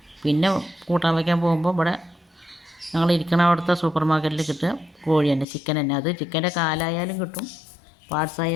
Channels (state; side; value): drops out; right; at 5.5 s